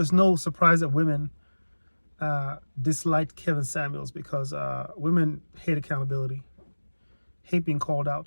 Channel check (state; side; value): inverted; both; correlation -1.00